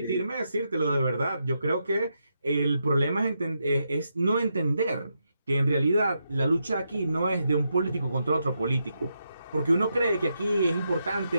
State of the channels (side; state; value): both; inverted; correlation -0.83